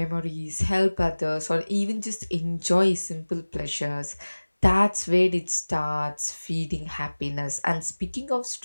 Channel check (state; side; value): inverted; both; correlation -1.00